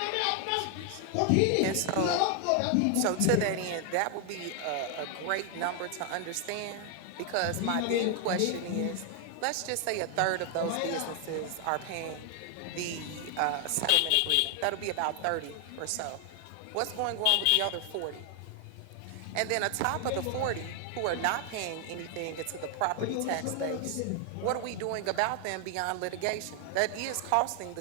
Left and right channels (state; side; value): different; both; correlation 0.00